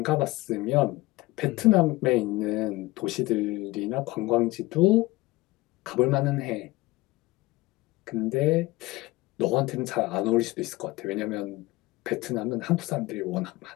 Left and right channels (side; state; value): right; quieter; 20.4 dB